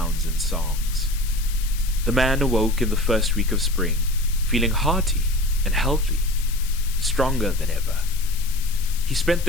and songs. The man awoke in the first week of spring, feeling hearty and healthy, stronger than ever. He spent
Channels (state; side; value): noise; left; hiss, 13 dB below the sound